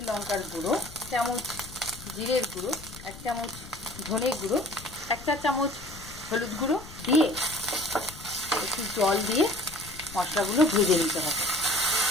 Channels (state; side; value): noise; left; rumble, 16 dB below the sound